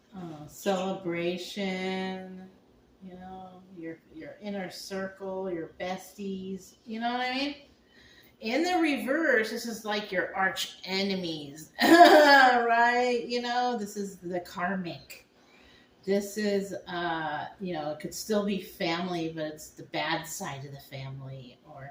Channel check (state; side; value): identical; both; correlation 1.00